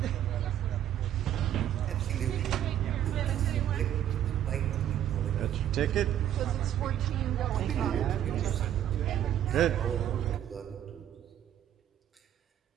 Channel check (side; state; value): left; quieter; 11.0 dB